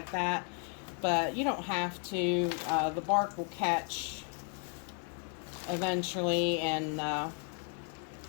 that. But you don't have to. The bark will catch eventually and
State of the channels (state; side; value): quieter; right; 39.8 dB